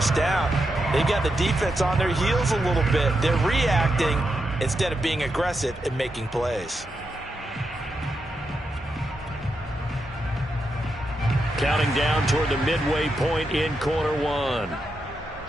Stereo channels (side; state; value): both; normal; correlation 0.85